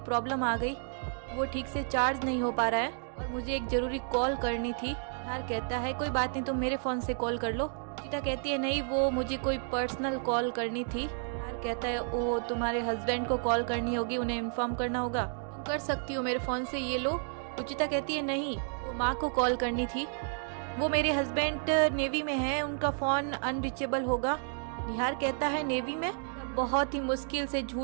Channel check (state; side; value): silent; left; 57 dB below the other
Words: आ गई, वो ठीक से चार्ज नहीं हो पा रहा है और मुझे एक जरूरी कॉल करनी थी। निहार कहता है कोई बात नहीं, तुम मेरे फोन से कॉल कर लो। रुचिता कहती है नहीं वो मुझे कोई पर्सनल कॉल करनी थी। निहार कहता है ओ तुम्हारे हस्बैंड को कॉल करनी होगी, उन्हें इन्फॉर्म करना होगा, तुम कर सकती हो मेरे फोन से, ये लो। रुचिता कहती है नहीं वो माँ को कॉल करनी थी, वो मेरे हस्बैंड नेवी में है, उनका फोन अनरीचेबल होगा। निहार कहता है नेवी में। बहुत ही मुश्किल से